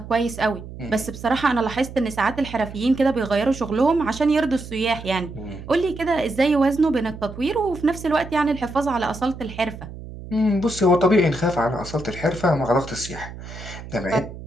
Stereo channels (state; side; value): noise; right; hum, 13 dB below the sound